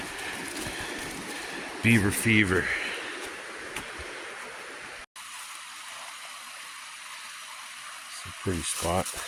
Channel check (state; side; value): identical; both; correlation 1.00